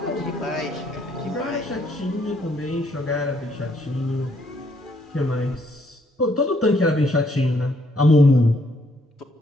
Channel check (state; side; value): normal; both; correlation 0.69